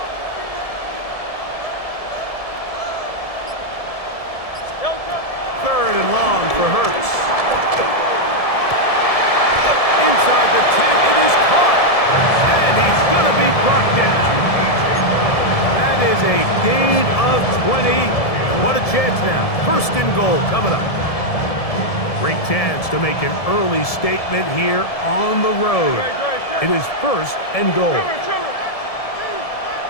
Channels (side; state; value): right; late; 1.7 ms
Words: Third and long for Hurts. Inside the 10, it is caught. And he's going to be brought down. That is a gain of 20. What a chance now. 1st and goal coming up. Great chance to make an early statement here on the road. It is 1st and goal.